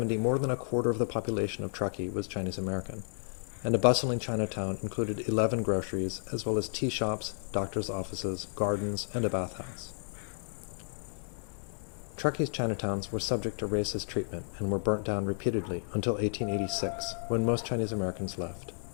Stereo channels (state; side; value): silent; right; digital silence